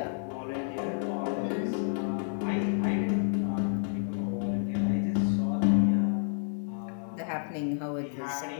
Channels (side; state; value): right; silent; digital silence